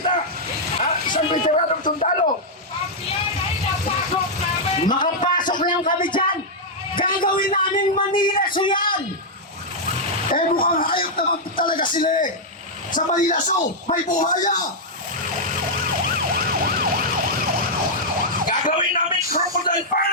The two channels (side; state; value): both; normal; correlation -0.05